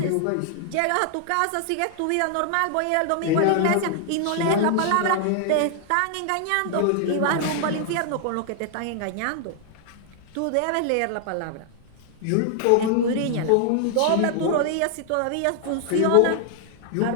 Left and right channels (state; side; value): different; both; correlation 0.00